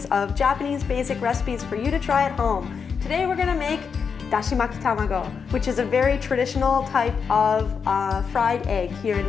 of Japanese basic recipes for you to try at home. Today we're gonna make Dashimaki Tamago, which is a very traditional type of fried egg here in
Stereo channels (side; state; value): right; quieter; 6.1 dB